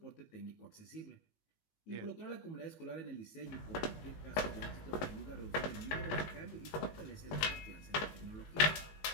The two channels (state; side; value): late; right; 19 ms